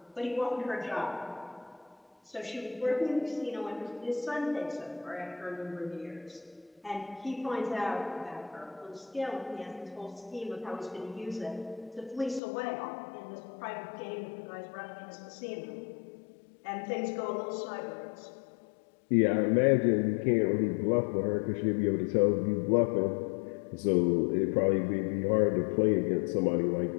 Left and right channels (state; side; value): drops out; right; at 12.4 s